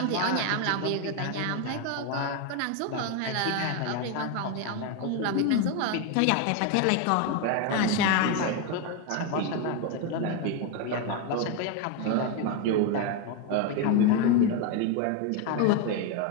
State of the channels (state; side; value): different; both; correlation 0.02